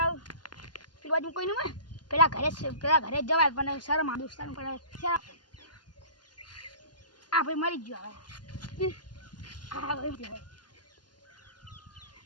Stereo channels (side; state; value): right; late; 0.70 ms